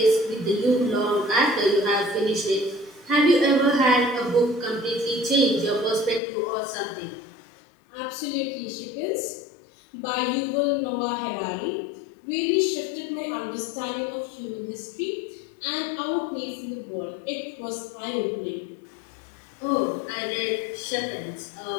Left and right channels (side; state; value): right; drops out; at 6.2 s